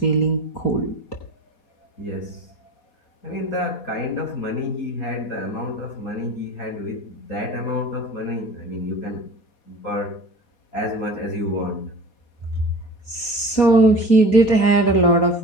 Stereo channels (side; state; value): right; late; 4.2 ms